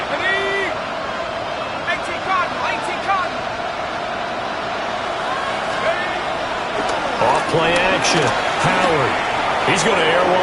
Play action. Howard. He's going to air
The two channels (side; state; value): both; identical; correlation 1.00